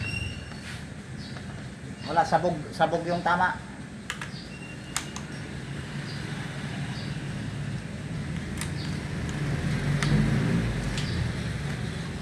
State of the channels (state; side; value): identical; both; correlation 1.00